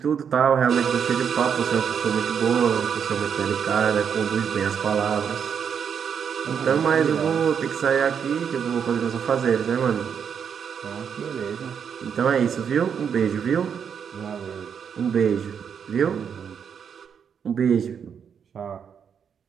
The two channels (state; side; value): quieter; left; 7.4 dB